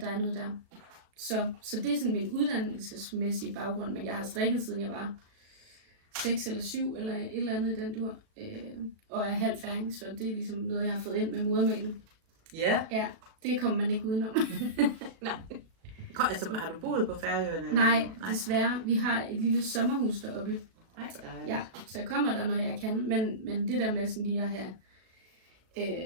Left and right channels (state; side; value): late; left; 37 ms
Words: er noget der. Så det er sådan min uddannelsesmæssige baggrund, men jeg har strikket siden jeg var 6 eller 7 eller et eller andet i den dur, og er halv færing, så det er ligesom noget, jeg har fået ind med modermælken. Ja. Ja, det kommer man ikke udenom. Nej. Altså, har du boet på Færøerne? Nej, desværre. Vi har et lille sommerhus deroppe. Nej, hvor dejligt. Ja, så jeg kommer der, når jeg kan, men det der med sådan lige at have